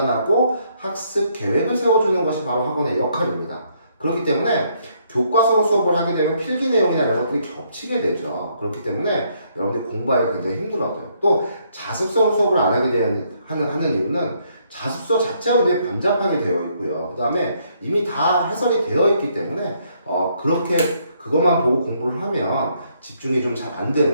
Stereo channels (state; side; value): inverted; both; correlation -0.70